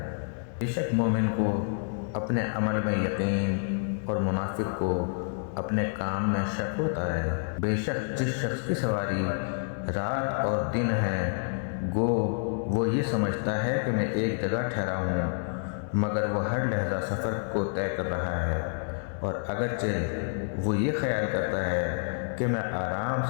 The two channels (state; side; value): silent; right; 59 dB below the other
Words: بے شک مومن کو اپنے عمل میں یقین اور منافق کو اپنے کام میں شک ہوتا ہے۔ بے شک جس شخص کی سواری رات اور دن ہے، گو وہ یہ سمجھتا ہے کہ میں ایک جگہ ٹھہرا ہوں، مگر وہ ہر لحظہ سفر کو طے کر رہا ہے، اور اگرچہ وہ یہ خیال کرتا ہے کہ میں آرام